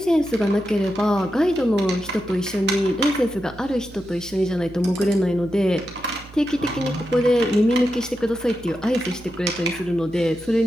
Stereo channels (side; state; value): right; noise; hum, 21 dB below the sound